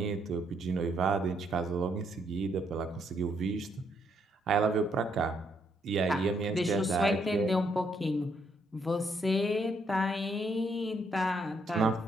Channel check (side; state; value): both; normal; correlation 0.73